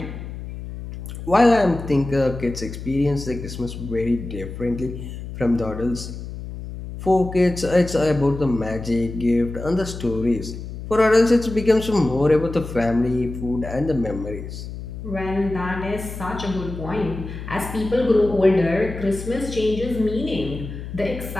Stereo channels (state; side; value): noise; left; hum, 9 dB below the sound